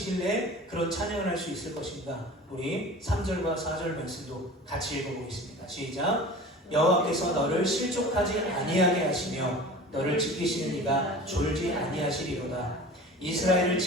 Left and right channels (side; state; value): both; normal; correlation 0.38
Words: 그런 찬양을 할 수 있을 것인가? 우리 3절과 4절 말씀도 같이 읽어보겠습니다. 시작. 여호와께서 너를 실족하지 아니하게 하시며 너를 지키시는 이가 졸지 아니하시리로다. 이스라엘을